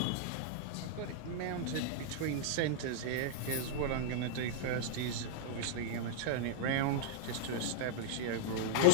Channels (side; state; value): both; different; correlation -0.02